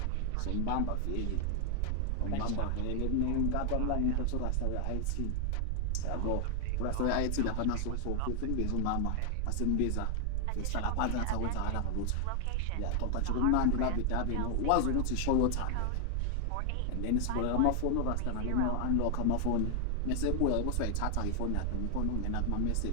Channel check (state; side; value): different; both; correlation 0.00